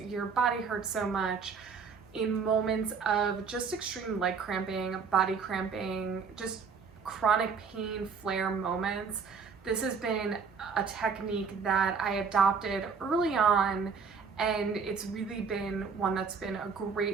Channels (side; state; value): left; quieter; 5.6 dB